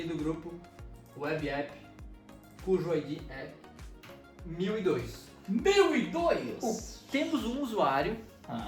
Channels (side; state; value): both; identical; correlation 1.00